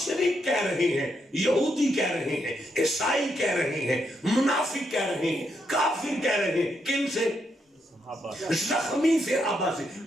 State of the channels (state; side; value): normal; both; correlation 0.79